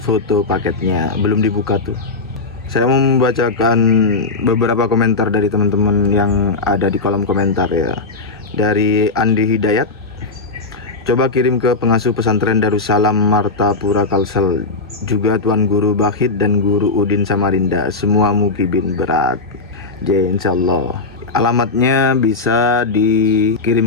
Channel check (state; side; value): quieter; right; 3.7 dB